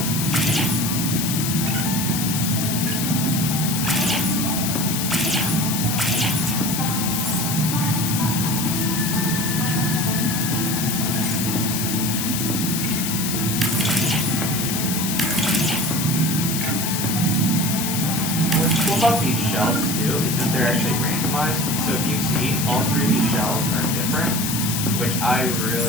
About these shells too is that they're actually randomized. So if you see, all three of these shells are different, which I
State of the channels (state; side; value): noise; left; hiss, 2 dB below the sound